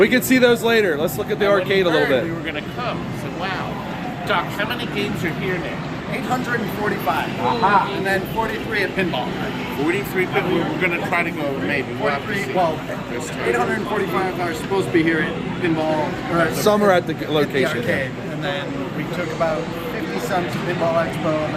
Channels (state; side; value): identical; both; correlation 1.00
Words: can see those later. Let's look at the arcade a little bit. We were going to come. I said, "Wow, Doc, how many games are here now?" 845. Aha. And then 43 at pinball. 43. But we were going to try to go maybe. We'll have to 43, see. well, 845 are supposed to be here at pinball. Or Some are at the at the location. arcade. And then we took about 50 some to Pinball Expo, and